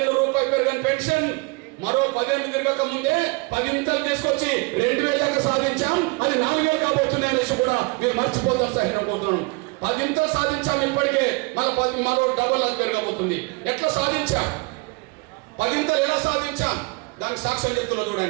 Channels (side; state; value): left; quieter; 28.7 dB